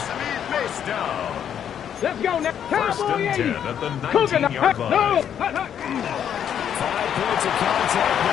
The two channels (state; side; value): quieter; right; 9.0 dB